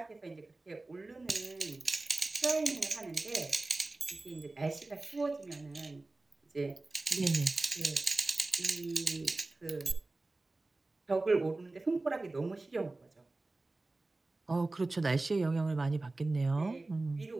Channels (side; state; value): left; quieter; 3.1 dB